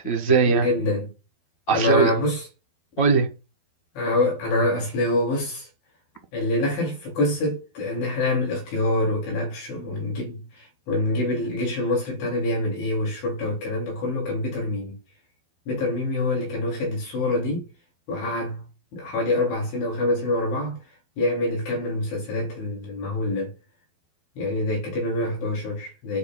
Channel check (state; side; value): late; right; 12 ms